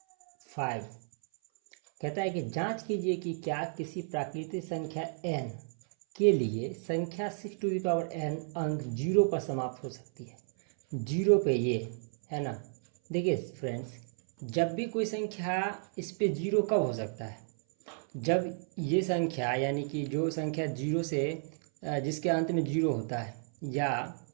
5 कहता है कि जांच कीजिए कि क्या किसी प्राकृतिक संख्या n के लिए संख्या 6n अंक 0 पर समाप्त हो सकती है। 0 पे ये है ना, देखिए फ्रेंड्स, जब भी कोई संख्या इस पे 0 कब हो सकता है, जब ये संख्या यानी कि जो संख्या 0 से जिसके अंत में 0 होता है, या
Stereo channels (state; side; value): silent; left; 56 dB below the other